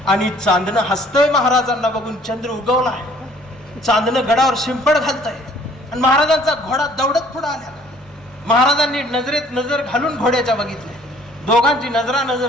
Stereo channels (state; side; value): normal; both; correlation 0.57